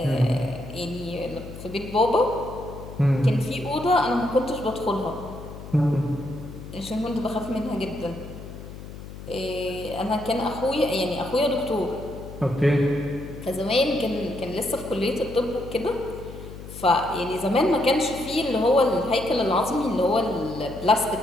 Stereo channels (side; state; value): left; noise; hum, 13 dB below the sound